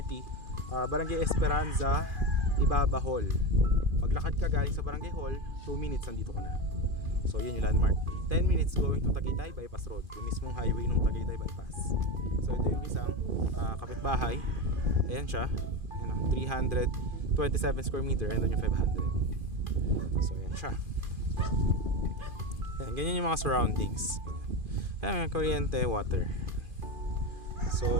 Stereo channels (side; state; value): left; late; 2.4 ms